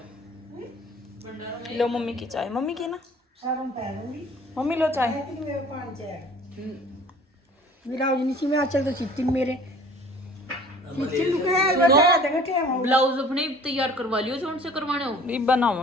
लो मम्मी की चाय, मम्मी की ना, मम्मी लो चाय। ब्लाउज अपने तैयार करवा लियो, कौन से करवाने हो? ईब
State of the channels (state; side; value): normal; both; correlation 0.49